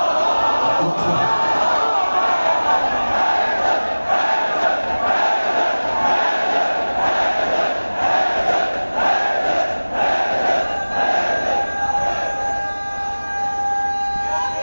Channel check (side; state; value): both; inverted; correlation -1.00